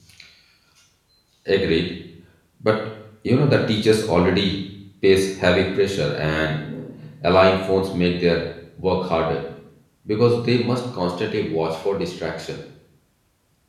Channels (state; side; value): identical; both; correlation 1.00